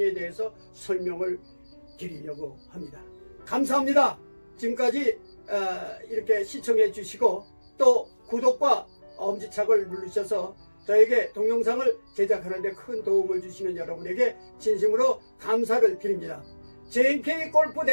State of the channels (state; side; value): inverted; both; correlation -1.00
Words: 대해서 설명을 드리려고 합니다. 감사합니다. 지금까지 이렇게 시청해 주시고 또 구독과 엄지척을 누르셔서 저에게 동영상을 제작하는 데 큰 도움을 주시는 여러분에게 진심으로 감사를 드립니다. JNK